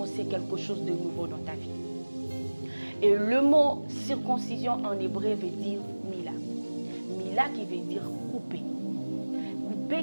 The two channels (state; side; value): inverted; both; correlation -1.00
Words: quelque chose de nouveau dans ta vie. Et le mot circoncision en hébreu veut dire mila. Mila qui veut dire couper.